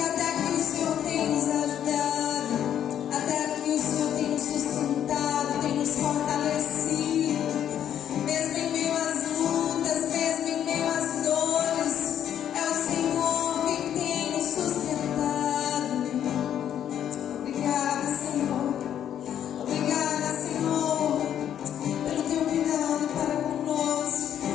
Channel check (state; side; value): quieter; right; 10.0 dB